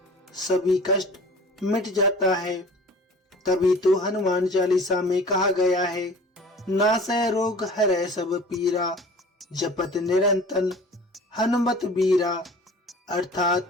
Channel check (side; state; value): both; normal; correlation 0.44